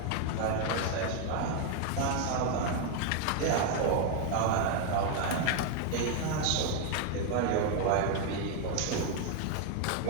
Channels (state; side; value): different; both; correlation 0.00